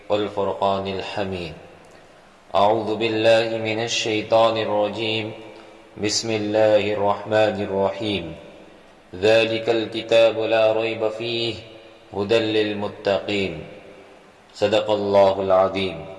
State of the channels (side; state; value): both; identical; correlation 1.00